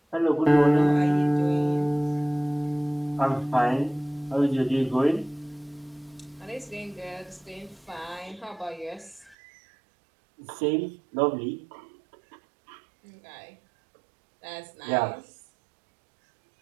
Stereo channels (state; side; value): drops out; left; at 9.3 s